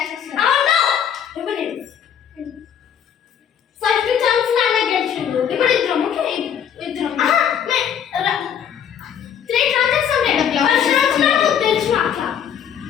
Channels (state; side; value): quieter; right; 8.7 dB